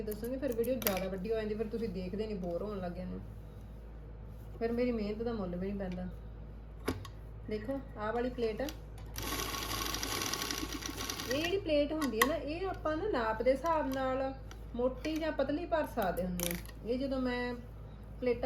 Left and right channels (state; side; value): identical; both; correlation 1.00